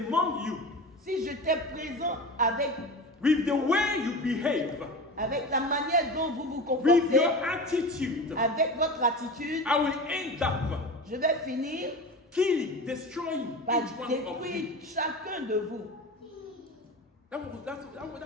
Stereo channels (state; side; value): normal; both; correlation 0.30